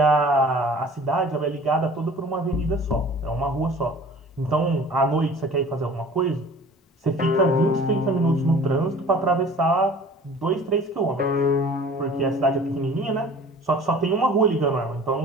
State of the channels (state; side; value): normal; both; correlation 0.46